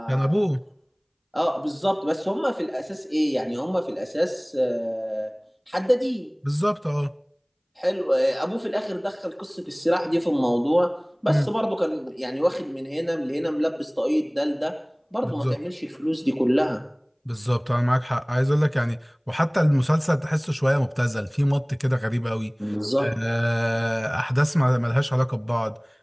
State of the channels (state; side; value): identical; both; correlation 1.00